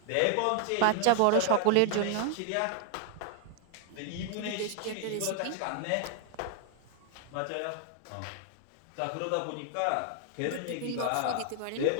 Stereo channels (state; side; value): different; both; correlation 0.00